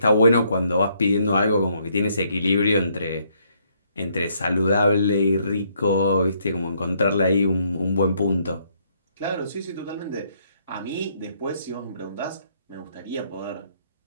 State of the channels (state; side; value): inverted; both; correlation -0.70